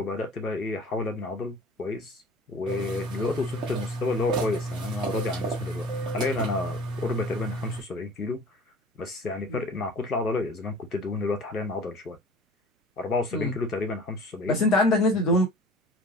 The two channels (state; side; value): normal; both; correlation 0.44